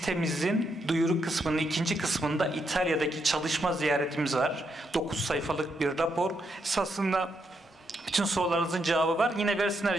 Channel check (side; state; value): both; normal; correlation 0.79